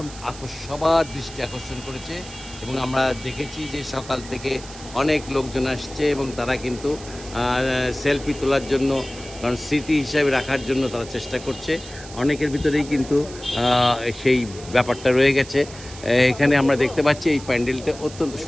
দৃষ্টি আকর্ষণ করেছে এবং আমরা দেখেছি যে সকাল থেকে অনেক লোকজন আসছে এবং তারা কিন্তু সেলফি তোলার জন্য, কারণ স্মৃতি হিসাবে রাখার জন্য তারা চেষ্টা করছে। অনেকের ভিতরেই কিন্তু সেই ব্যাপারটা রয়ে গেছে। এখানে আমরা দেখতে পাচ্ছি এই প্যান্ডেলটা অত্যন্ত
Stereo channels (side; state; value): right; noise; hiss, 16 dB below the sound